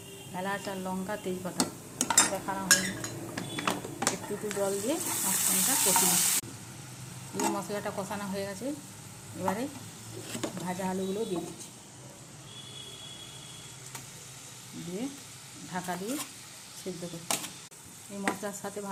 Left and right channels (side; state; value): both; identical; correlation 1.00